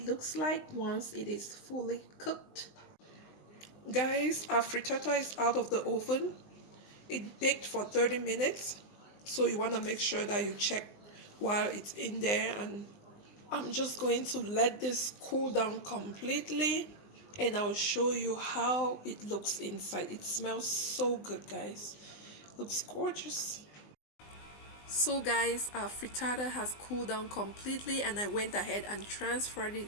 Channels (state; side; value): late; right; 20 ms